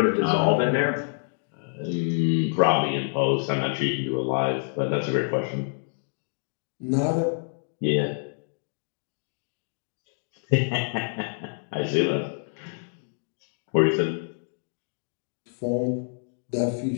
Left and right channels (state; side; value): silent; right; digital silence